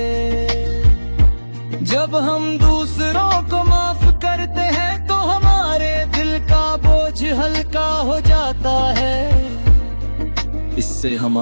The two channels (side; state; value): both; inverted; correlation -1.00